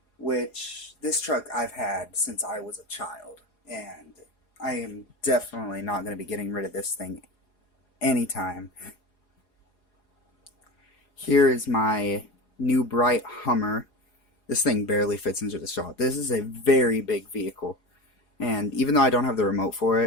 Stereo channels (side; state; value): right; late; 4.8 ms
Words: which this truck I've had since I was a child, and I am definitely not going to be getting rid of this thing anytime. Here is my new bright Hummer. This thing barely fits into the shop. This is a very big vehicle, and even though I don't have the remote for